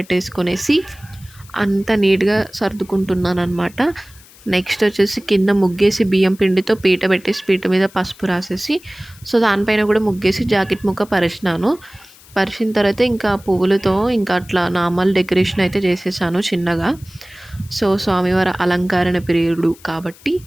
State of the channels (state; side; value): noise; left; hiss, 24 dB below the sound